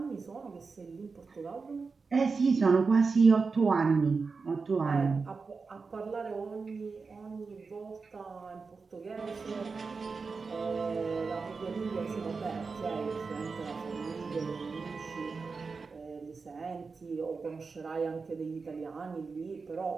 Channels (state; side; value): quieter; left; 4.6 dB